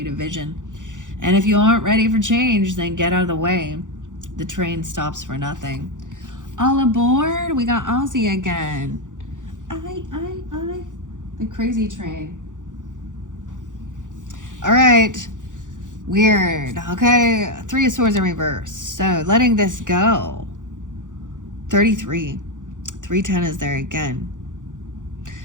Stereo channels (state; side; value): late; left; 0.87 ms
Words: vision. And if you aren't ready for change, then get out of the way. The train stops for nothing. All aboard! We got Ozzy again. I. The crazy train. All right. Weird. Okay. 3 of Swords in reverse. So letting this go. 33. 310 is there again.